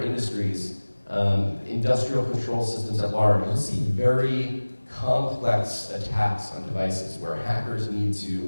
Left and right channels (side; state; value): both; inverted; correlation -1.00